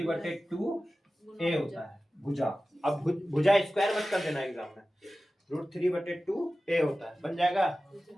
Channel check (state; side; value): normal; both; correlation 0.95